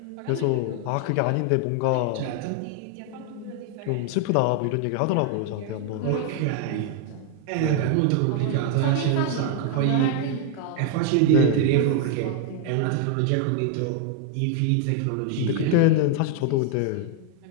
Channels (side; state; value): both; different; correlation 0.00